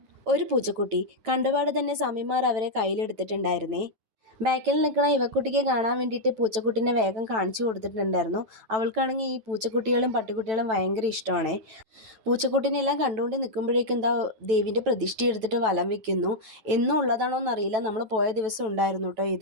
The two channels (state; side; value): late; left; 9.1 ms